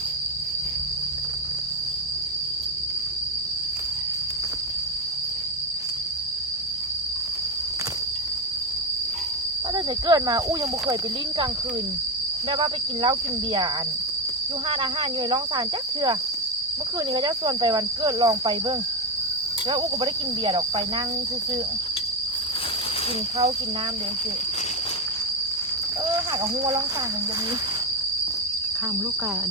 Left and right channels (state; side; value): normal; both; correlation 0.11